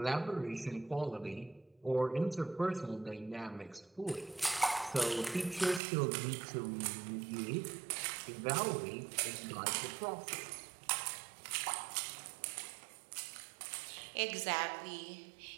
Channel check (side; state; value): left; drops out; at 5.8 s